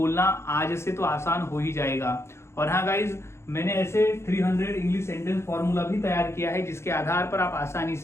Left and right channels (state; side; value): late; right; 0.13 ms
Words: आज से तो आसान हो ही जाएगा। और हाँ गाइज, मैंने ऐसे 300 इंग्लिश सेंटेंस फॉर्मूला भी तैयार किया है, जिसके आधार पर आप आसानी